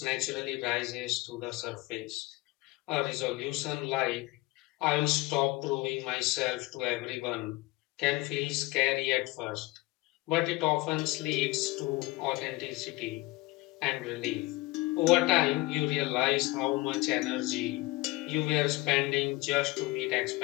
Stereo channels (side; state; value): right; quieter; 21.6 dB